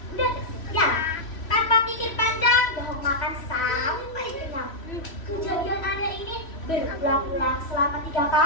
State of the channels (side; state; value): right; late; 3.1 ms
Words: tersedia. Tanpa pikir panjang, Dohong makan sampai kenyang. Kejadian aneh ini berulang-ulang selama 3